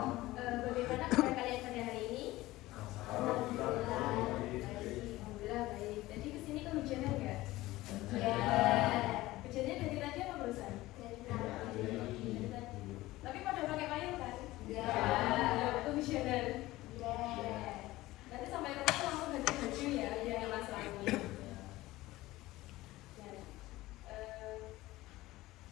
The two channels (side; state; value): right; quieter; 17.9 dB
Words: Bagaimana kabar kalian pada hari ini? Alhamdulillah. Alhamdulillah baik. Jadi kesini kehujanan nggak? Ya. Hujannya dari tadi apa barusan? Dari tadi. Tapi pada pakai payung kan? Ya. Kehujanan. Ya. Nanti sampai rumah langsung ganti baju ya, jangan masalahnya. Nah,